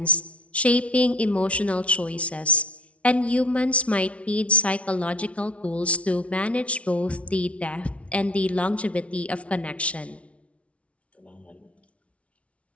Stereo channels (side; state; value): right; late; 0.063 ms